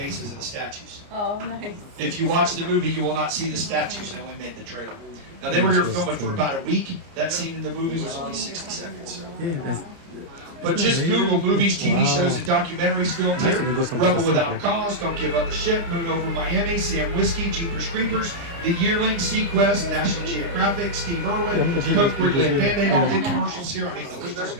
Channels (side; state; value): left; late; 29 ms